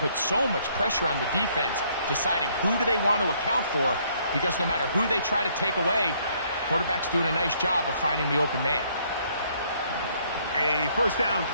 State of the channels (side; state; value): both; inverted; correlation -0.66